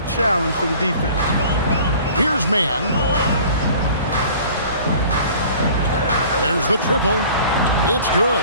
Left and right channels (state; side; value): inverted; both; correlation -0.47